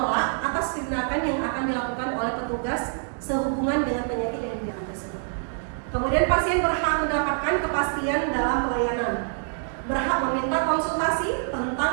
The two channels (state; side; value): silent; left; 61 dB below the other